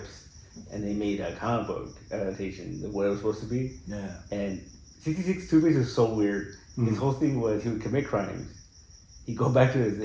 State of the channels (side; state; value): both; identical; correlation 1.00